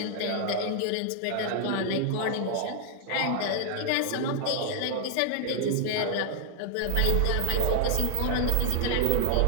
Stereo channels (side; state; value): both; different; correlation 0.00